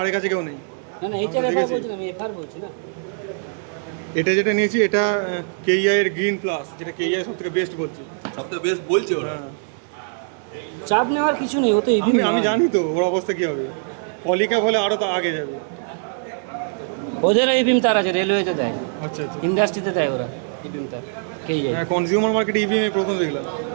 কাছে কেউ নেই। না না, এইচআর এফআর বলছি না, আমি এফআর বলছি না। এটা যেটা নিয়েছি এটা কেইআই এর গ্রিন প্লাস, যেটা কেইআই সব থেকে বেস্ট বলছি। সবথেকে বেস্ট বলছে ওরা। হ্যাঁ, চাপ নেওয়ার কিছু নেই, ও তো আমি জানি তো ওর অবস্থা কি হবে। পলিক্যাপ হলে আরো তো আগে যাবে। ওদের ইবিএম তার আছে, রেলওয়েতে দেয়, আচ্ছা আচ্ছা। ইন্ডাস্ট্রিতে দেয় ওরা ইবিএম তার। হ্যাঁ, কনজিউমার মার্কেটে ইভিএম প্রথম দেখলাম,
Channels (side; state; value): left; silent; digital silence